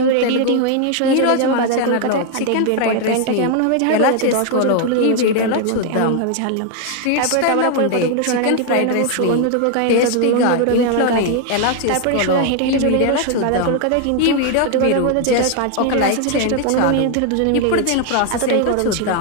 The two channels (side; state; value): both; different; correlation 0.00